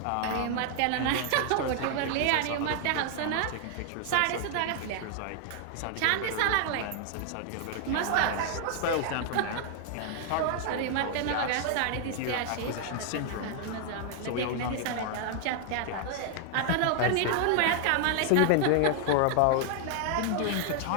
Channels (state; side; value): different; both; correlation 0.00